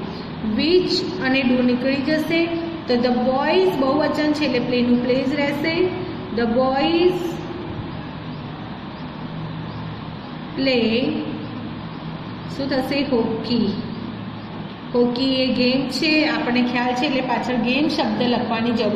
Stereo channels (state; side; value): identical; both; correlation 1.00